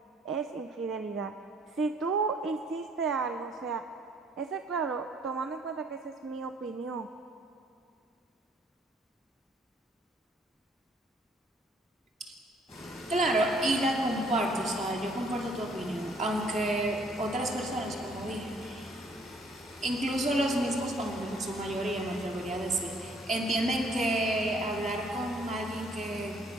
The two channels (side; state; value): both; normal; correlation 0.63